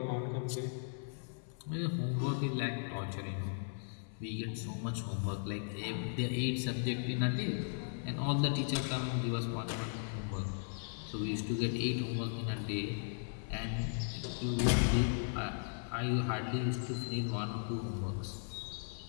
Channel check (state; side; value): silent; right; 53 dB below the other